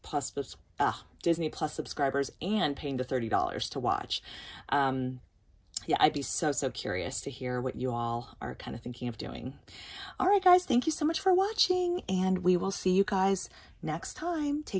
Plus subscribers and paying the $30 to watch. Yeah, I'd be so curious to hear what you all are kind of thinking of doing. All right, guys, thank you so much for watching, and we will see you guys next time.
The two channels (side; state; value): both; identical; correlation 1.00